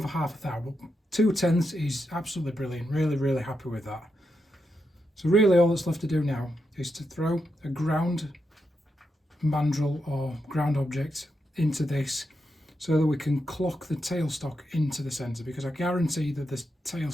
half a thou, but 2/10 is absolutely brilliant. Really happy with that. So really all that's left to do now is to throw a ground mandrel or ground object into this so that we can clock the tailstock into the centre, because I guarantee that the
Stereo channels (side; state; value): both; normal; correlation 0.85